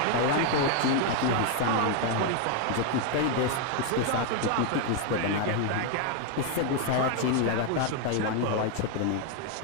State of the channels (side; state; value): both; different; correlation 0.01